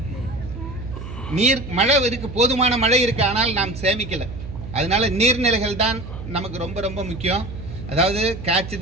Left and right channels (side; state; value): right; noise; hum, 11 dB below the sound